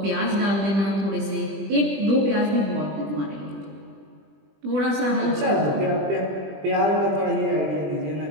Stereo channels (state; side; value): late; left; 20 ms